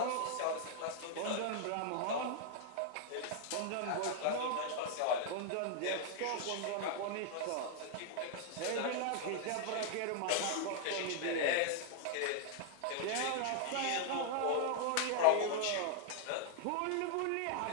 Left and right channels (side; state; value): both; different; correlation -0.01